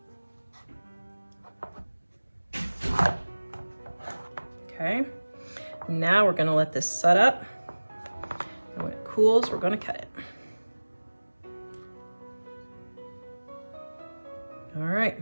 Okay, now we're gonna let this set up. And when it cools, we're gonna cut it. All right,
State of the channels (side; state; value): both; inverted; correlation -1.00